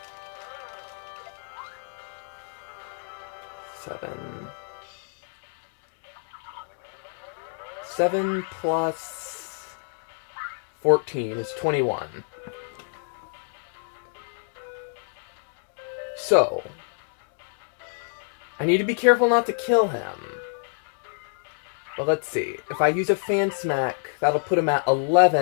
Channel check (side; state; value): right; silent; 60 dB below the other